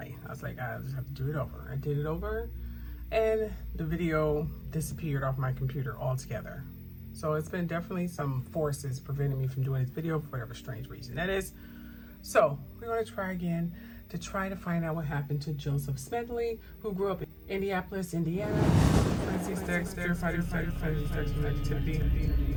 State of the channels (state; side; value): identical; both; correlation 1.00